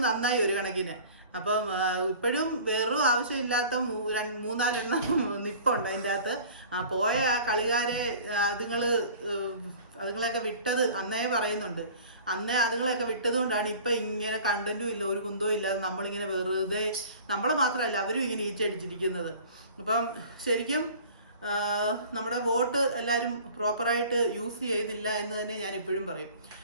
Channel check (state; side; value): inverted; both; correlation -0.45